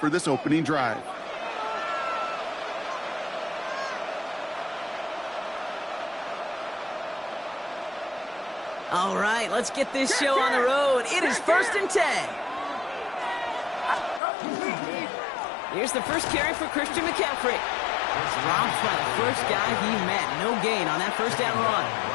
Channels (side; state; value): right; drops out; at 14.2 s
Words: this opening drive. All right, let's get this show on the road. It is 1st and 10. Here's the first carry for Christian McCaffrey. It's robbed by the first guy he met. No gain on that first down run.